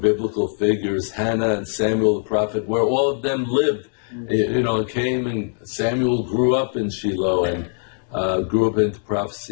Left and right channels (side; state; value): right; silent; digital silence